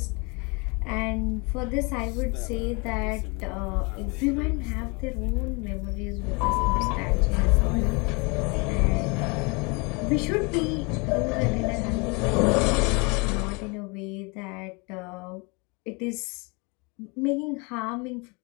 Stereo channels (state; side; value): quieter; right; 30.1 dB